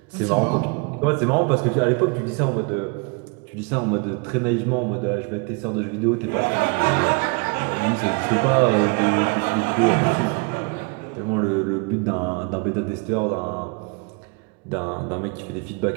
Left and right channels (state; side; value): quieter; left; 31.3 dB